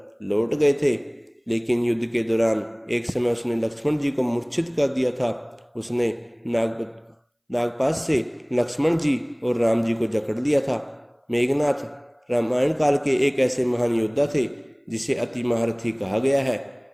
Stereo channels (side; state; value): both; identical; correlation 1.00